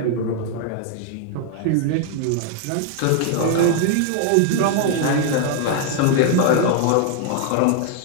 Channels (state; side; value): different; both; correlation 0.00